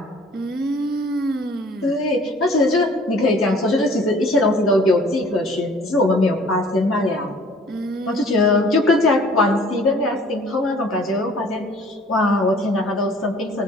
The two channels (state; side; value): normal; both; correlation 0.52